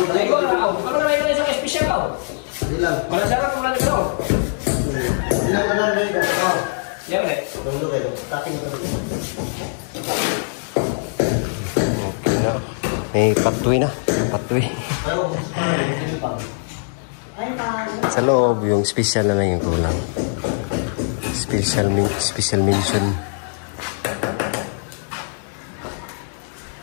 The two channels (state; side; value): silent; right; digital silence